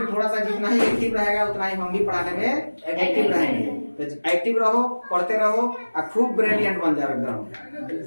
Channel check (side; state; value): both; inverted; correlation -1.00